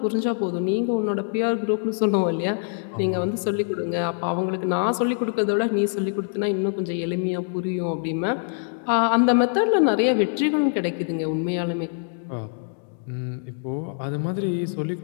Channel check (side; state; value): right; silent; digital silence